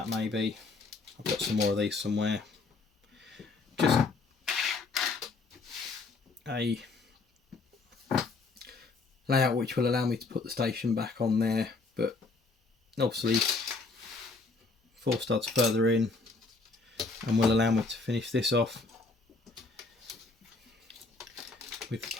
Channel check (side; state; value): right; quieter; 3.9 dB